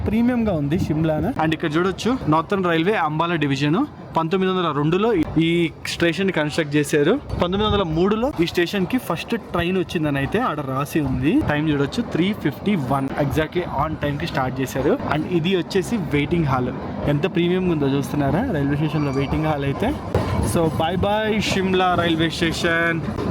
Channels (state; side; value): identical; both; correlation 1.00